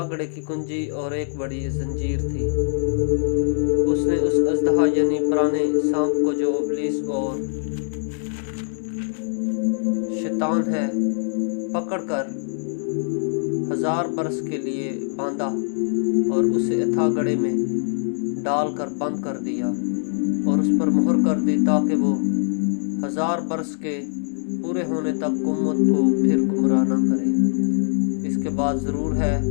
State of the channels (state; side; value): silent; right; digital silence